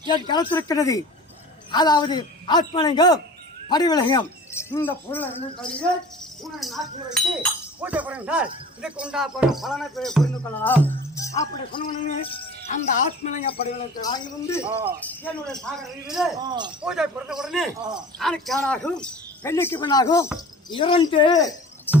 என் கருத்திருக்கிறது. அதாவது ஆத்மலிங்கம் படிவிலகம் இந்த பொருளை உன்னை நாட்டில் வைத்து பூஜை புரிந்தால் இதுக்கு உண்டாப்படும் பலனை புரிந்து கொள்ளலாம். அப்படி சொன்ன அந்த ஆத்மலிங்க படிவிலகத்தை வாங்கி வந்து என்னுடைய சாகர பூஜை புரிந்த உடனே ஆணுக்கானாகும் பெண்ணுக்கு பெண்ணாகும் 2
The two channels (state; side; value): normal; both; correlation 0.42